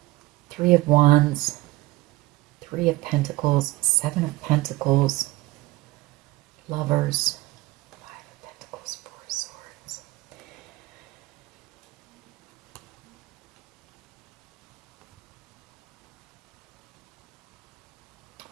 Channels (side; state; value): left; quieter; 19.4 dB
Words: Three of Wands, Three of Pentacles, Seven of Pentacles, Lovers, Five of Pentacles, Four of Swords.